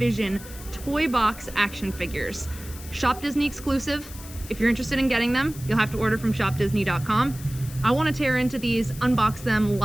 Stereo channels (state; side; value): noise; left; hiss, 16 dB below the sound